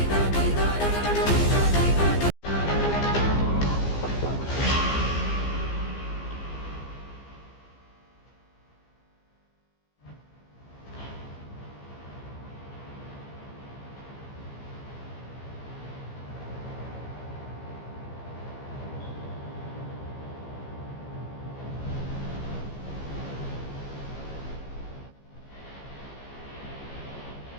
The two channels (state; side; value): late; right; 15 ms